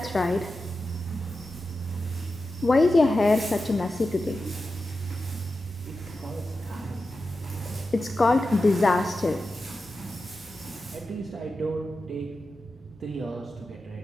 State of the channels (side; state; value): both; normal; correlation 0.91